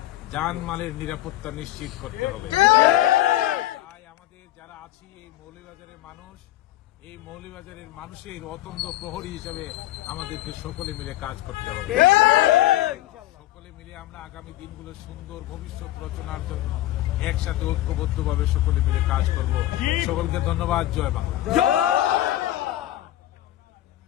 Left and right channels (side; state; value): right; quieter; 14.9 dB